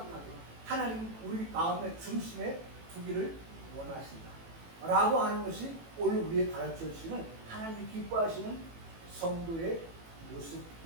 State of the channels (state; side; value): late; left; 18 ms